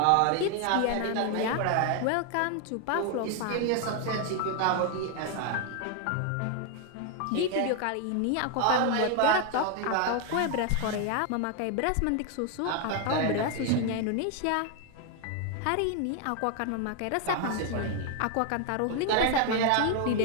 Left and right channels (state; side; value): different; both; correlation 0.00